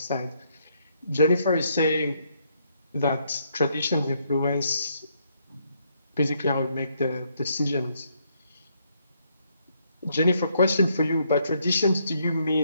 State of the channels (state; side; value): inverted; both; correlation -0.73